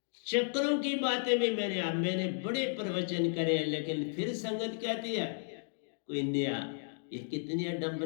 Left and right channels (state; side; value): silent; right; digital silence